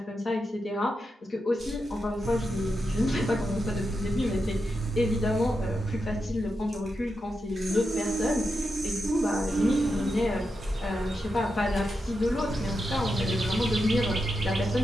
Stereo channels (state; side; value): normal; both; correlation 0.87